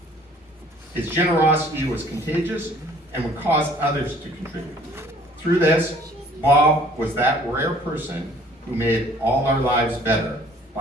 His generosity was contagious and would cause others to contribute. Through this, Bob was that rare person who made all our lives better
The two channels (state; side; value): normal; both; correlation 0.55